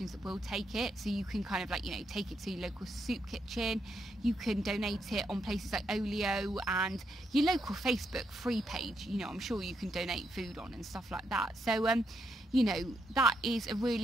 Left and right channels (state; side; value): normal; both; correlation 0.79